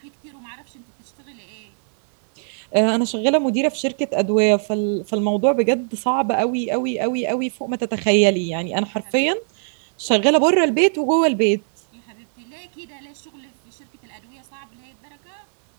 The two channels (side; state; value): left; silent; 65 dB below the other